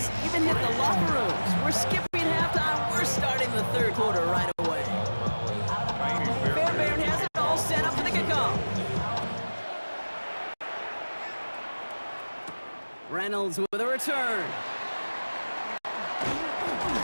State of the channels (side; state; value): both; inverted; correlation -1.00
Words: even hit the locker rooms. We're skipping halftime. We're starting the third quarter right away. Fairbairn has it all set up for the kickoff. Reynolds with a return.